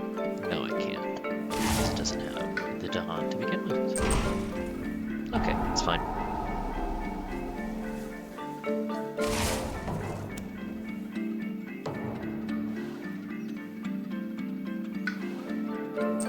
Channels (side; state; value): both; identical; correlation 1.00